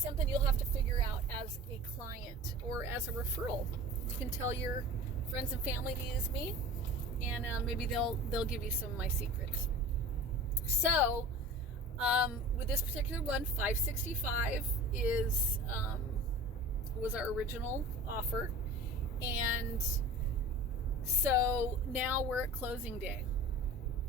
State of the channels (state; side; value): normal; both; correlation 0.39